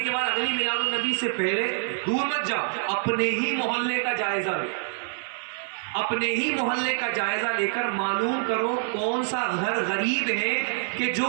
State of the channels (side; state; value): left; silent; 61 dB below the other